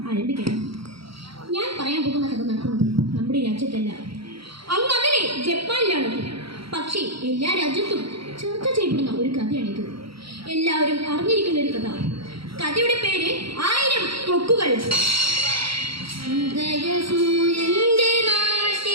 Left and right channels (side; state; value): left; late; 0.75 ms